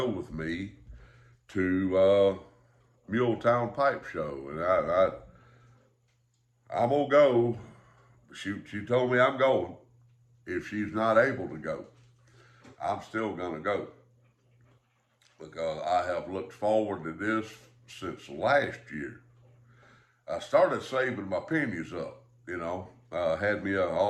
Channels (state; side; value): identical; both; correlation 1.00